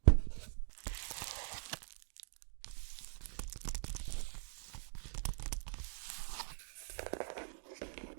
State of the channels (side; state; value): left; silent; digital silence